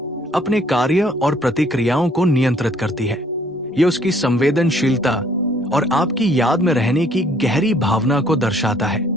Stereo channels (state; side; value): normal; both; correlation 0.61